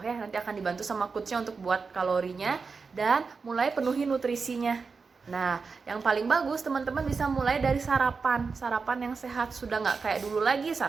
Nanti akan dibantu sama coachnya untuk buat kalorinya dan mulai penuhi nutrisinya. Nah, yang paling bagus teman-teman bisa mulai dari sarapan yang sehat. Sudah nggak kayak dulu lagi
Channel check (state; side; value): quieter; left; 4.8 dB